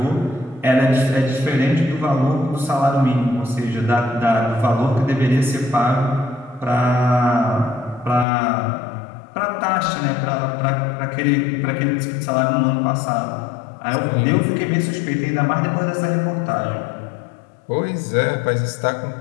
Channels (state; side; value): drops out; right; at 8.2 s